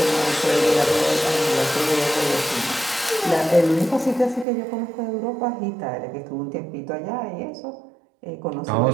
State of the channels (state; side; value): drops out; left; at 4.5 s